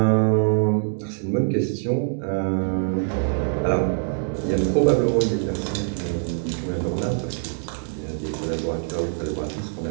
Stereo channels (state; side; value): silent; left; digital silence